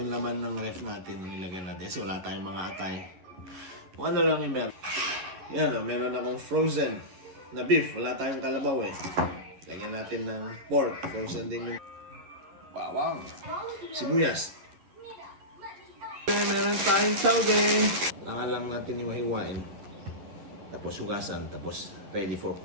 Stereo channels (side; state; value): left; late; 11 ms